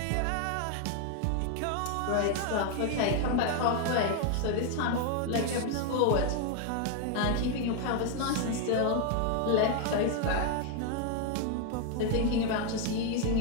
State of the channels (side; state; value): both; different; correlation 0.00